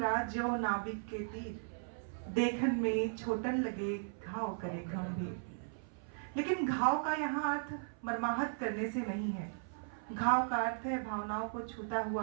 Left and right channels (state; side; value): silent; left; 53 dB below the other